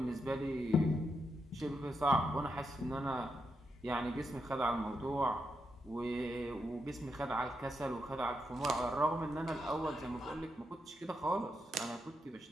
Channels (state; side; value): normal; both; correlation 0.83